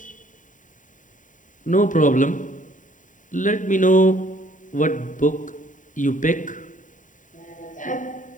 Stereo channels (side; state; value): right; late; 0.37 ms